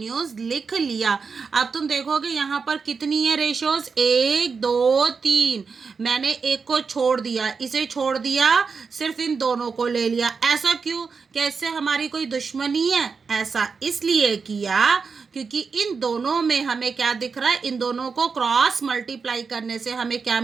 लिख लिया। अब तुम देखोगे यहाँ पर कितनी है रेशोज, 1 2 3, मैंने एक को छोड़ दिया, इसे छोड़ दिया, सिर्फ इन दोनों को ले लिया। ऐसा क्यों? कैसे हमारी कोई दुश्मनी है? ऐसा इसलिए किया क्योंकि इन दोनों में हमें क्या दिख रहा है, इन दोनों को क्रॉस मल्टीप्लाई करने से हमें क्या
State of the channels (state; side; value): quieter; left; 5.2 dB